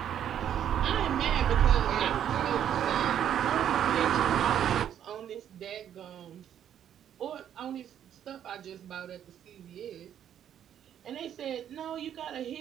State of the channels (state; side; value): quieter; left; 9.9 dB